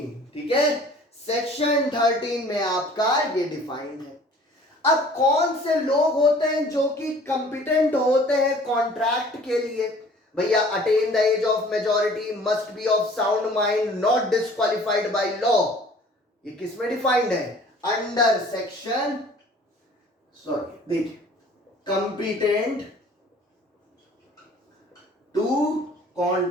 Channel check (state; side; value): normal; both; correlation 0.50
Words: ठीक है, सेक्शन 13 में आपका ये डिफाइंड है। अब कौन से लोग होते हैं जो कि कंपिटेंट होते हैं कॉन्ट्रैक्ट के लिए? भैया, attain the age of majority, must be of sound mind, not disqualified by law. ये किस में डिफाइंड है? अंडर सेक्शन, सॉरी देखिए, कंपिटेंट टू